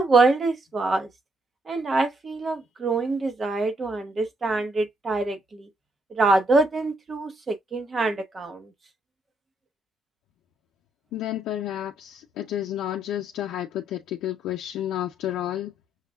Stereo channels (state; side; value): normal; both; correlation 0.73